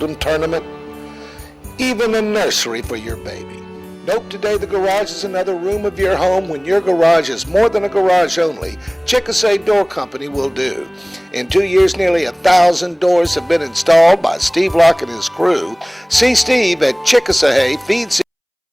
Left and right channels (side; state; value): both; identical; correlation 1.00